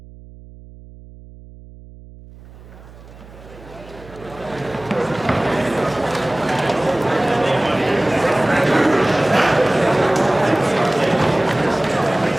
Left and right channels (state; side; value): noise; right; hum, 20 dB below the sound